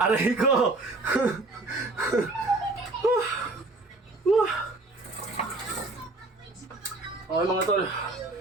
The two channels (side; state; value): left; quieter; 3.0 dB